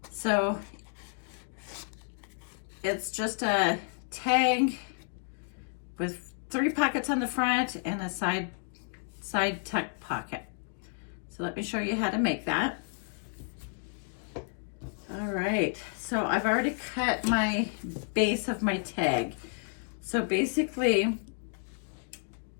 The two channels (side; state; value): right; silent; 57 dB below the other